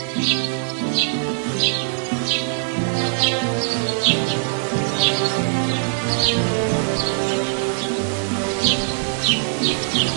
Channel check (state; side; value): silent; left; 63 dB below the other